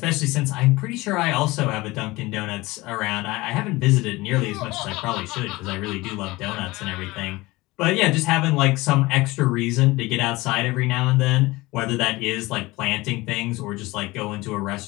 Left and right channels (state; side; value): quieter; right; 21.0 dB